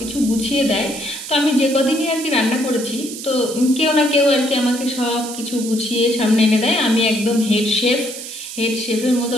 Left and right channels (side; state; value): right; noise; hiss, 10 dB below the sound